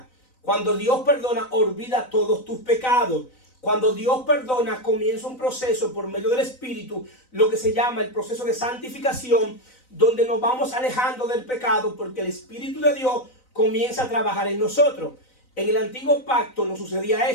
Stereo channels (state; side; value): late; right; 3.9 ms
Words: Cuando Dios perdona, olvida todos tus pecados. Cuando Dios perdona, comienza un proceso por medio del Espíritu, lo que se llama el proceso de santificación, donde nos vamos alejando del pecado, porque el Espíritu de Dios comienza a trabajar en nosotros. En el antiguo pacto no sucedía